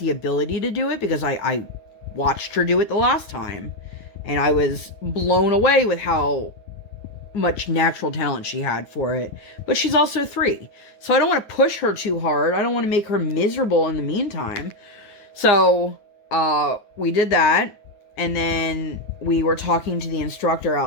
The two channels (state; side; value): late; right; 9.4 ms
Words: ability to do it because I watched her do it the last time. And I was blown away with how much natural talent she had for it. But she's also 3. So I don't want to push her too hard. I don't want to make her miserable in the meantime. So we did that. And then we were talking to the instructor